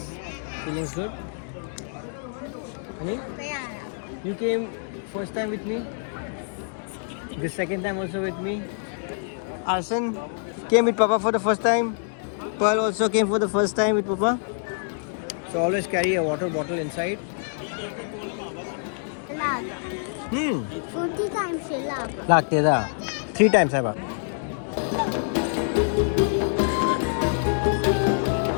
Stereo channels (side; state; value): right; silent; digital silence